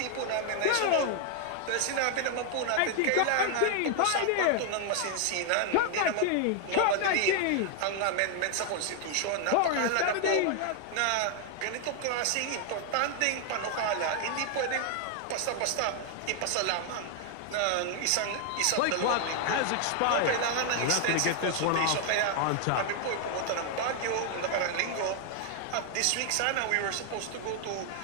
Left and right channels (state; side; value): different; both; correlation 0.00